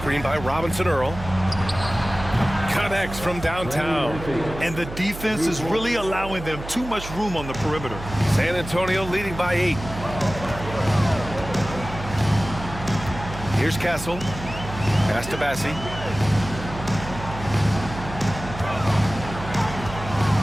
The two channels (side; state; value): right; noise; hum, 11 dB below the sound